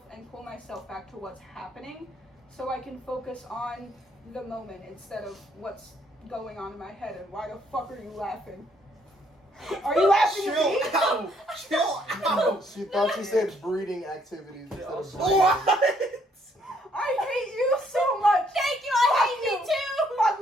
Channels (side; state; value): both; normal; correlation 0.68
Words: and pull myself back to what's happening, so I can focus on the moment instead of what's going on in my head. And why the fuck are you laughing? Are you laughing at me? Chill out. She thought you said breeding activities instead of breathing. What? I hate you so much. Thank you, I hate me too. Fuck